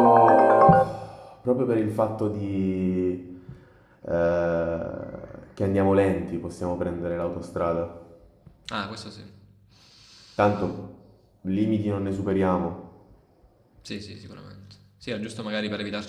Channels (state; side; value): identical; both; correlation 1.00